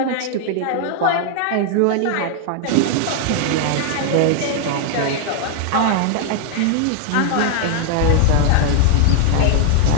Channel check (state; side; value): different; both; correlation 0.00